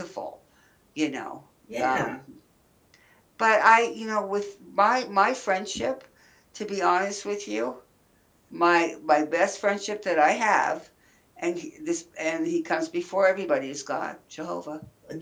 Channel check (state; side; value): identical; both; correlation 1.00